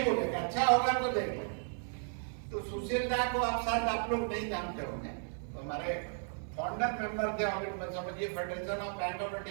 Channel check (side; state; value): left; silent; 55 dB below the other